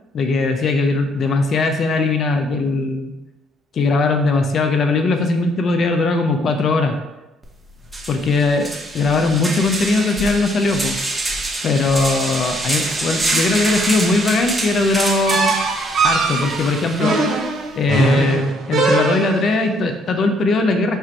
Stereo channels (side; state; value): both; normal; correlation 0.68